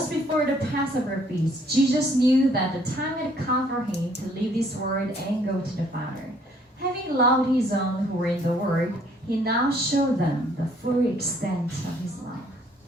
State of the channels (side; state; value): both; normal; correlation 0.63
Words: before the Passover feast. Jesus knew that the time had come for him to leave this world and go to the Father. Having loved his own who were in the world, he now showed them the full extent of his love.